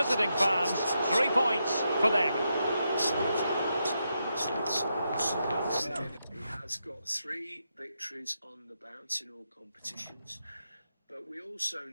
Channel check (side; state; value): both; inverted; correlation -0.84